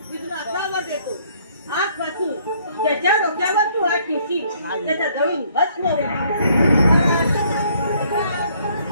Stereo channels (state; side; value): inverted; both; correlation -0.64